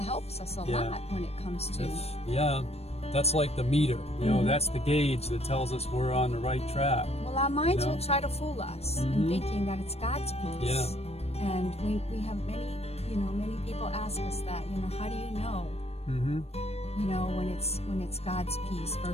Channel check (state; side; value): late; right; 0.30 ms